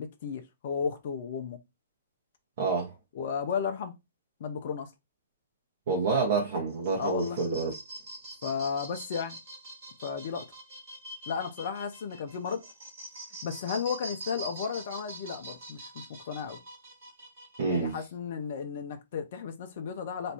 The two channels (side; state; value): both; inverted; correlation -0.43